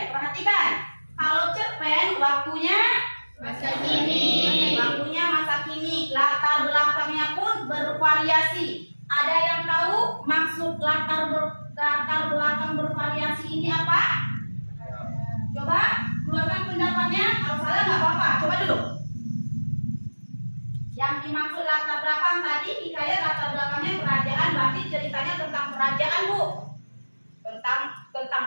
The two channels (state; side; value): inverted; both; correlation -1.00